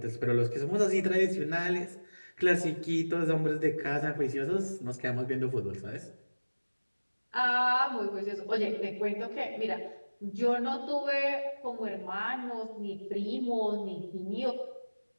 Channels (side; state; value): both; inverted; correlation -1.00